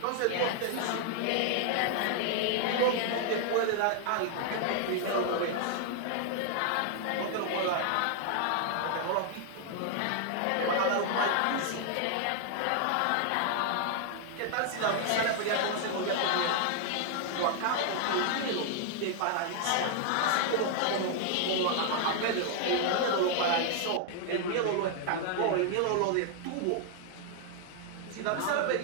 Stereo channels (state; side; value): different; both; correlation 0.00